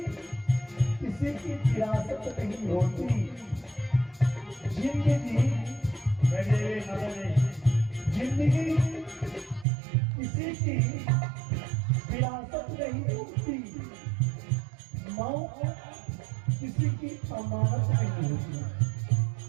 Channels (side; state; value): left; drops out; at 9.7 s